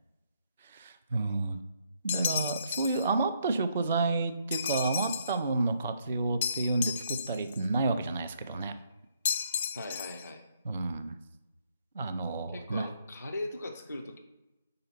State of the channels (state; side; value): inverted; both; correlation -0.71